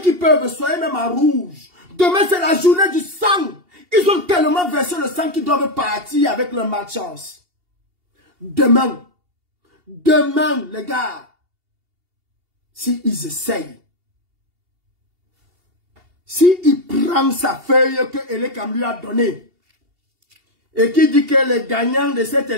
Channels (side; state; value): left; late; 2.8 ms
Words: peuvent, soyez même à rouge. Demain, c'est la journée du sang. Ils ont tellement versé le sang qu'ils doivent partir avec leur malchance. Demain, les gars, s'ils essayent, s'il prend sa feuille que Elekam lui a donnée, et qui dit que le gagnant de cette